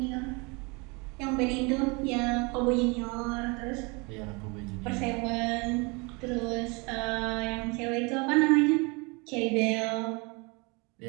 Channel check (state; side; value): quieter; left; 29.1 dB